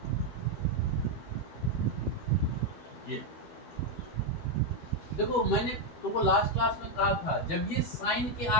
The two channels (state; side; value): late; right; 13 ms